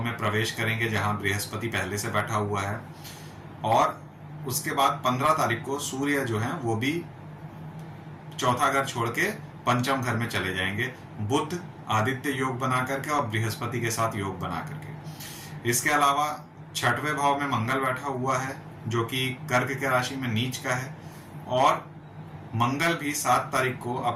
में प्रवेश करेंगे जहां बृहस्पति पहले से बैठा हुआ है, और उसके बाद 15 तारीख को सूर्य जो है वो भी चौथा घर छोड़ के पंचम घर में चले जाएंगे, बुध आदित्य योग बना करके और बृहस्पति के साथ योग बना करके। इसके अलावा छठवें भाव में मंगल बैठा हुआ है जो कि कर्क के राशि में नीच का है, और मंगल भी 7 तारीख को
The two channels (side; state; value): both; identical; correlation 1.00